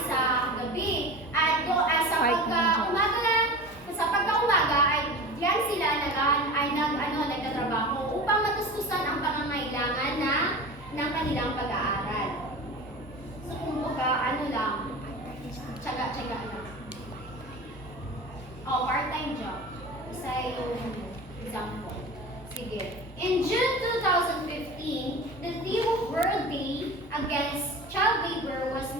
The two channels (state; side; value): normal; both; correlation 0.33